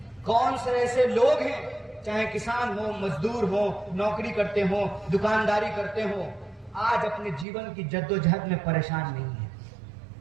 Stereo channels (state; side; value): drops out; left; at 7.5 s